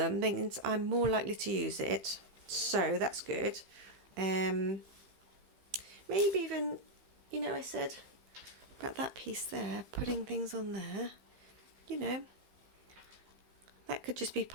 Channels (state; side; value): late; left; 15 ms